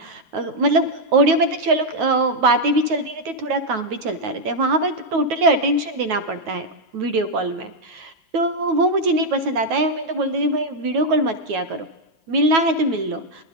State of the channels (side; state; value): left; late; 9.3 ms